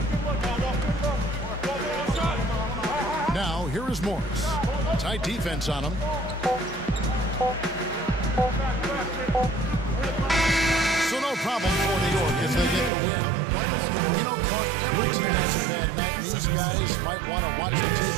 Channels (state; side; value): drops out; left; at 12.9 s